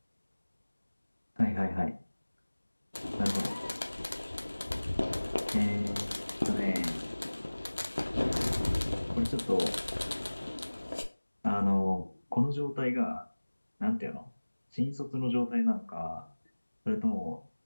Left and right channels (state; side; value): inverted; both; correlation -1.00